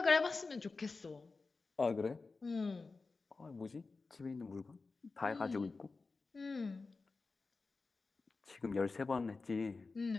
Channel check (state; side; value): quieter; right; 4.0 dB